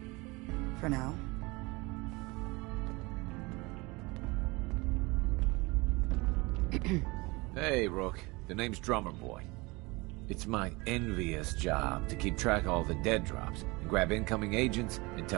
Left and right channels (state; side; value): quieter; left; 24.6 dB